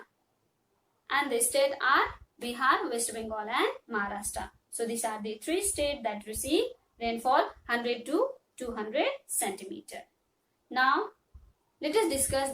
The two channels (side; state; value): both; identical; correlation 1.00